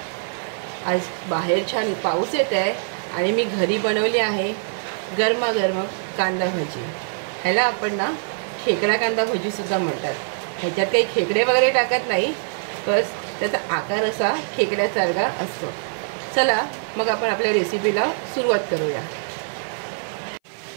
आज बाहेर छान पाऊस येत आहे आणि मी घरी बनवली आहे गरमागरम कांदा भजी। ह्याला आपण ना खेकडा कांदा भजी सुद्धा म्हणतात। ह्याच्यात काही खेकडे वगैरे टाकत नाही, बस त्याचा आकार असा खेकड्यासारखा असतो। चला मग आपण आपल्या रेसिपीला सुरुवात करूया।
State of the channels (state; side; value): silent; left; 57 dB below the other